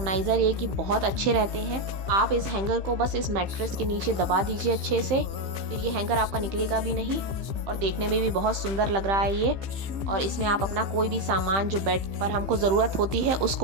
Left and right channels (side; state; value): left; late; 15 ms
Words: ये कि बहुत अच्छे रहते हैं। आप इस हैंगर को बस इस मैट्रेस के नीचे दबा दीजिए अच्छे से, फिर ये हैंगर आपका निकलेगा भी नहीं और देखने में भी बहुत सुंदर लग रहा है ये। और इसमें आप अपना कोई भी सामान जो बेड पर हमको ज़रूरत होती है